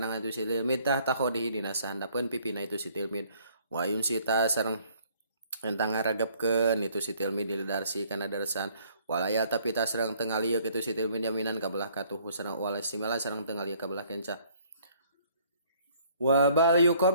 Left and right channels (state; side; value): inverted; both; correlation -0.61